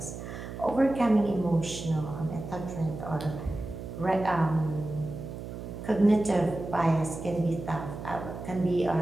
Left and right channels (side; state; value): right; noise; hum, 9 dB below the sound